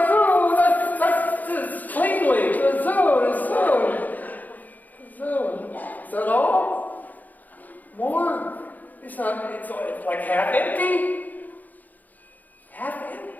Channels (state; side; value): late; right; 0.082 ms